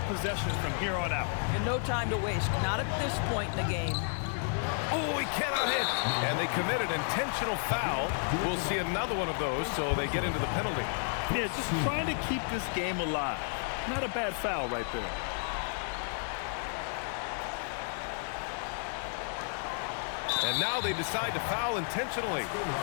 possessions from here on out. And no time to waste. Not at this point in the game. Oh, he cannot hit. And they committed intentional foul. We'll see another one of those, so they get into the penalty. Yeah, just trying to keep this game alive. Not a bad foul right there. And now they decide to foul intentionally.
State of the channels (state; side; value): silent; right; 56 dB below the other